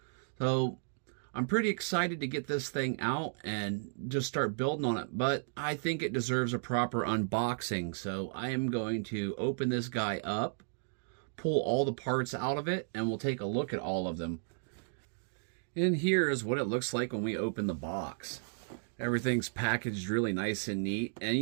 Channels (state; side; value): silent; left; digital silence